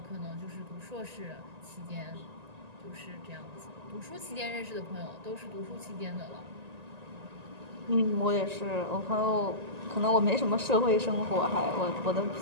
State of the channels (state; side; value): late; left; 1.9 ms